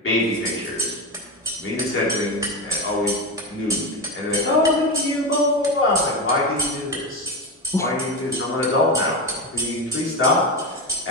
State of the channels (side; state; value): both; normal; correlation 0.18